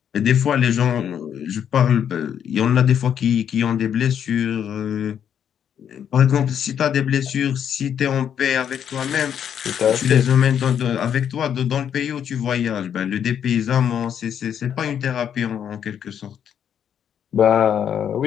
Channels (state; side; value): quieter; right; 8.8 dB